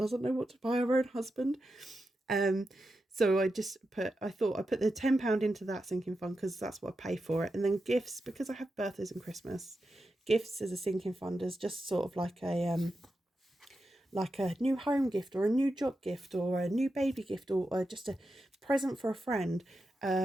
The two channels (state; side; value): normal; both; correlation 0.89